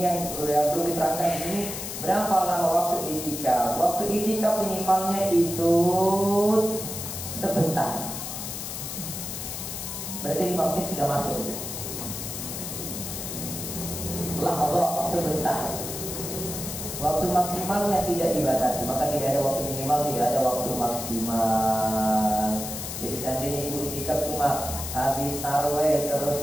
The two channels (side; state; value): left; noise; hiss, 6 dB below the sound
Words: yang perlu diterangkan di sini. Berapa lama waktu iktikaf? Waktu iktikaf minimalnya itu sebentar. Berarti 5 menit sudah masuk. Allah sebentar. Waktu maksimal yang tidak dibatasi, maka tidak ada waktu minimal, tidak ada waktu maksimal. Jadi seandainya ibu itikaf cuma habis tarawih